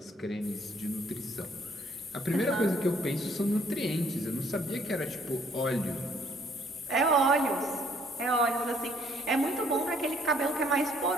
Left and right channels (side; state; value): both; normal; correlation 0.63